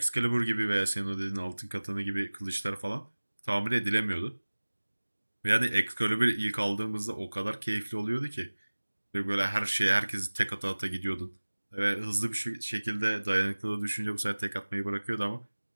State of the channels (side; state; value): both; inverted; correlation -1.00